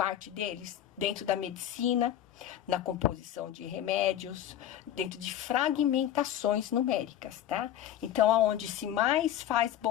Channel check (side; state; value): right; quieter; 11.4 dB